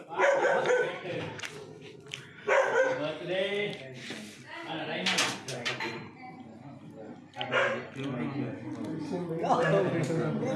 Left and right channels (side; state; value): both; identical; correlation 1.00